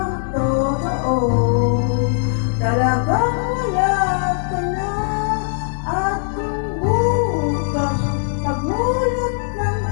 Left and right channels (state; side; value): silent; right; digital silence